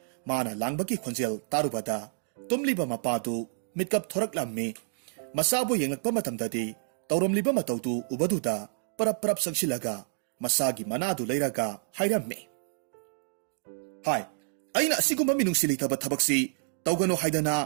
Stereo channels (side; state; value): left; silent; digital silence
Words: mana langbaki khonjel tarubada tumliba mapadu mitkap thoraklamme masabu yenglakpa matamdadi tawramliba matawdu ubaduda parap sangsilaga masagi manadu leiraga hairamme hai ꯑꯩꯅ ꯑꯁꯤꯒꯨꯝꯕ ꯃꯤꯅꯨꯡꯁꯤ ꯂꯩꯇꯕ ꯊꯕꯛꯁꯤ ꯇꯧꯒꯅꯨ ꯍꯥꯏꯗꯅ